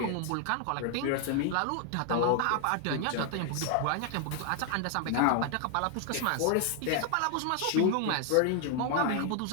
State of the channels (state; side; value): different; both; correlation 0.00